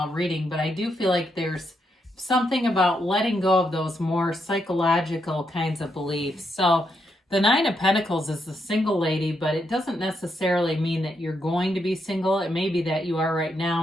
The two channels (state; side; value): normal; both; correlation 0.80